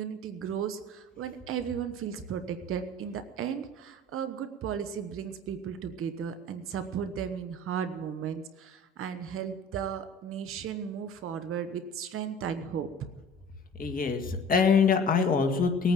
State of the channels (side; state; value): both; normal; correlation 0.44